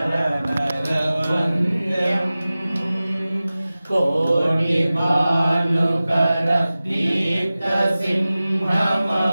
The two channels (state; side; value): inverted; both; correlation -0.97